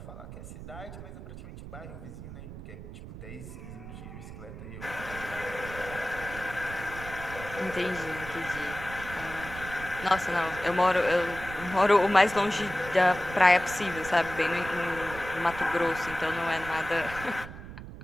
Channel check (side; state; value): right; noise; rumble, 12 dB below the sound